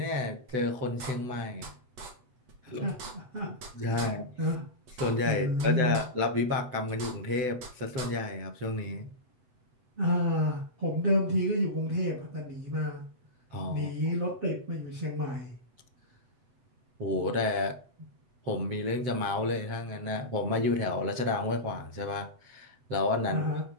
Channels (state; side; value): late; left; 8.0 ms